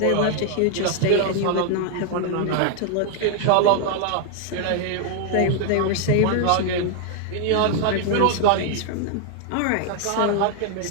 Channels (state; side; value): different; both; correlation 0.00